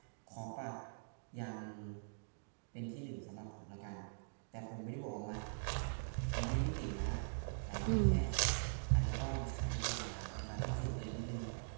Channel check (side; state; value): left; silent; digital silence